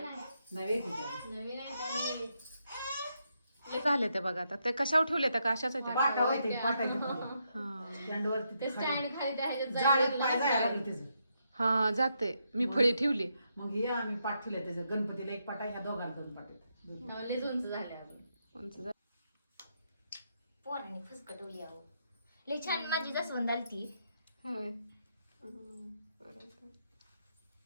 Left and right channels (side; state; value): both; inverted; correlation -0.80